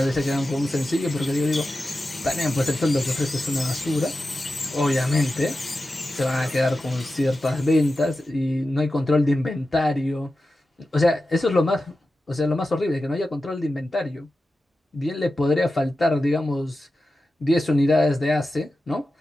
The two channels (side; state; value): both; normal; correlation 0.92